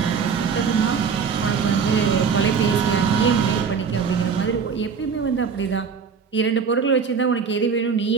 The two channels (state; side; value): quieter; left; 6.1 dB